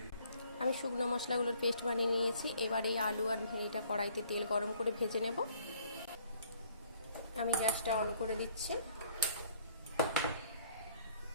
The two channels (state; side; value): inverted; both; correlation -0.61